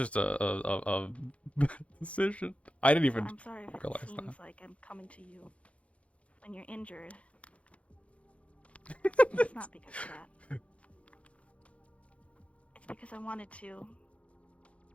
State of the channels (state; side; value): late; right; 0.063 ms